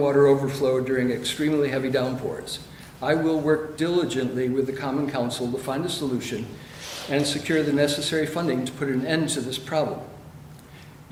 overflow during extremely heavy downpours. I will work diligently with the Common Council to find a solution and secure the necessary funding to put an end to this problem.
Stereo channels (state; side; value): identical; both; correlation 1.00